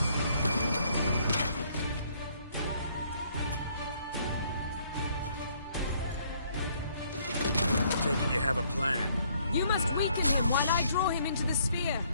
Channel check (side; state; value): both; inverted; correlation -0.65